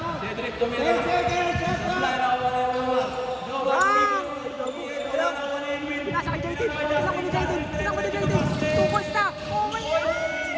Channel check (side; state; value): both; identical; correlation 1.00